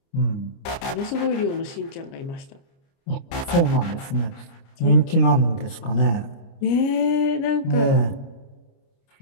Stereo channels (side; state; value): right; late; 29 ms